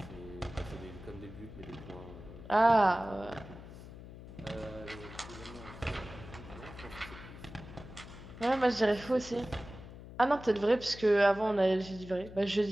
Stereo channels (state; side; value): noise; left; hum, 15 dB below the sound